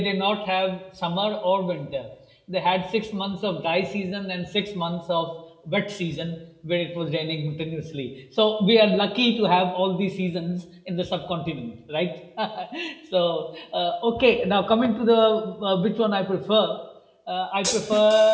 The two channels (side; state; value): both; identical; correlation 1.00